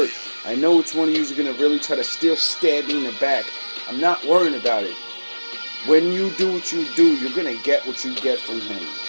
I know which one of yous are gonna really try to still stab me in the back. I'm not worrying about it. When you do what you do, you're gonna get what you get from him.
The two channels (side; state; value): both; inverted; correlation -1.00